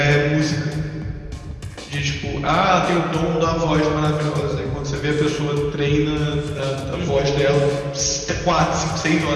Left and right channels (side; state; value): both; identical; correlation 1.00